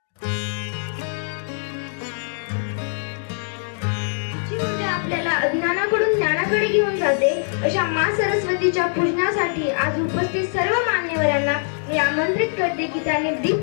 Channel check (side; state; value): right; silent; digital silence